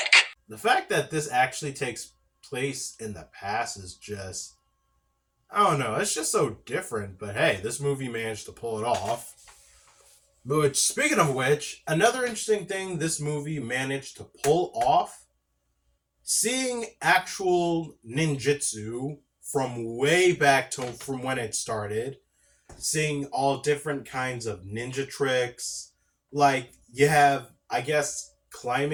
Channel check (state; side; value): identical; both; correlation 1.00